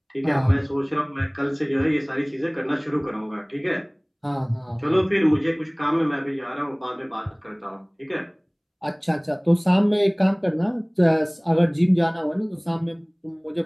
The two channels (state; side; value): identical; both; correlation 1.00